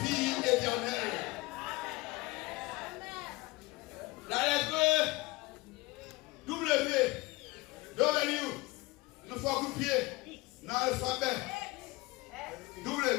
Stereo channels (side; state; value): right; quieter; 22.0 dB